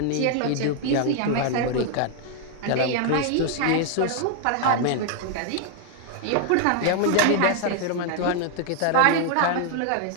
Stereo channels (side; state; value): both; different; correlation 0.00